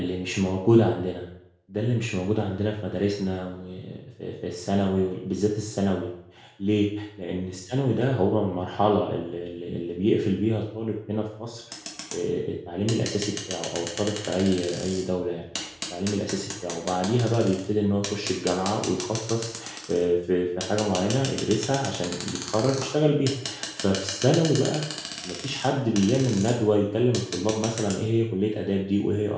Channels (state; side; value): identical; both; correlation 1.00